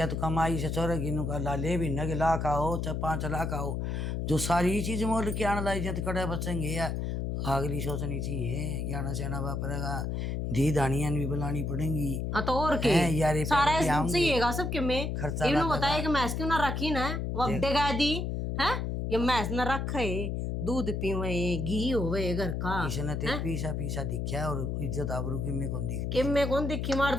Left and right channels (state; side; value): noise; left; hum, 2 dB below the sound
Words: तो कमाई से चोरेगी नु का ला ले भी न के लाख आओ चाहे 5 लाख आओ जो सारी चीज मोल के आने लाई जाते कड़े बचेंगे या अगली सोचनी चाहिए ज्ञाना सेना वापरेगा धी दानियां भी बुलानी पड़ेंगी। हाँ तो और के हैं यार ये सारा पैसे आएंगे, चाहिएगा सबके में खर्चा इन्हों लगेगा। बताया कि मैस क्यों ना रखी ना वक्त गा दी है ये मैस ना रखे दूध पीवे घी होवे घर का इसने ते पीसा पीसा दिखा और इज्जत आबरू की में कौन दिखती कि मैं कौन दिखी मार